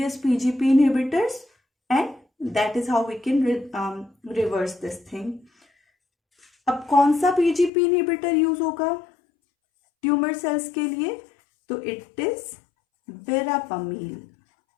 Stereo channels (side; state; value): right; drops out; at 7.7 s